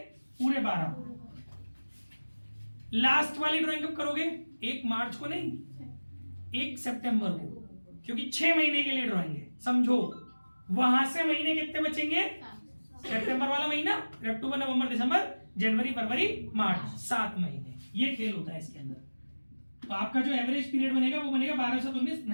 पूरे 12। लास्ट वाली ड्राइंग कब करोगे, 1 मार्च को नहीं, 1 सितंबर को, क्योंकि 6 महीने के लिए ड्राइंग है, समझो वहां से महीने कितने बचेंगे, सितंबर वाला महीना, अक्टूबर नवंबर दिसंबर जनवरी फरवरी मार्च, 7 महीने, ये खेल होता है इसके अंदर। तो आपका जो एवरेज पीरियड बनेगा वो बनेगा 12 से 19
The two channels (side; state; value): both; inverted; correlation -1.00